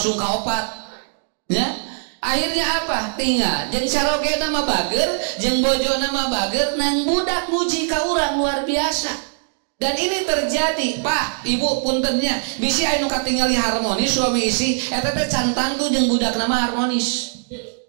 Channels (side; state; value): left; silent; digital silence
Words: ka 4. Ya. Akhirnya apa? Tinggal jeung carogena mah bager, jeung bojona mah bager, nang budak muji ka urang luar biasa. Dan ini terjadi, Pak, Ibu puntennya, bisi anu katingali harmonis suami istri, eta teh can tangtu jeung budak nama harmonis.